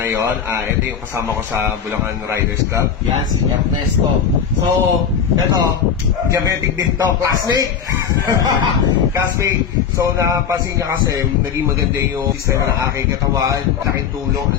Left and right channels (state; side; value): quieter; right; 7.3 dB